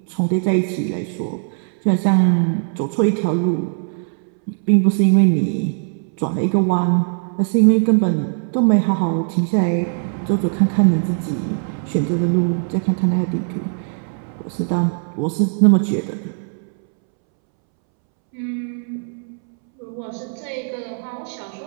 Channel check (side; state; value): left; silent; 66 dB below the other